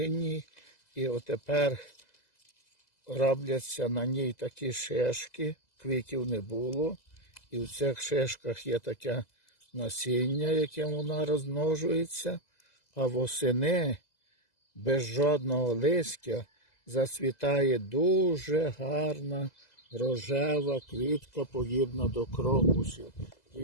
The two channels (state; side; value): late; right; 2.0 ms